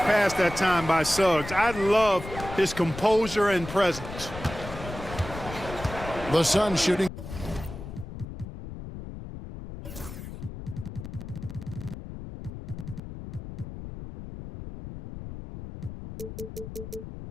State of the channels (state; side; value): noise; left; rumble, 10 dB below the sound